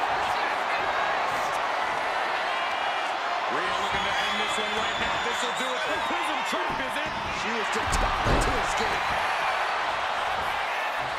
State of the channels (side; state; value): both; identical; correlation 1.00